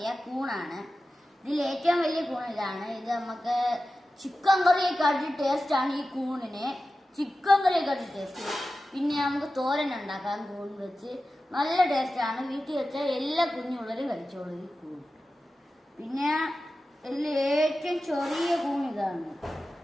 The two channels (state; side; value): normal; both; correlation 0.94